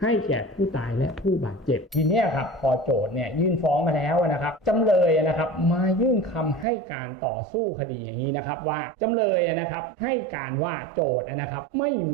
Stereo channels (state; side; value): drops out; left; at 6.7 s